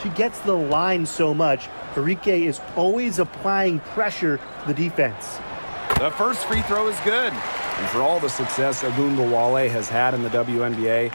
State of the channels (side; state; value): both; inverted; correlation -1.00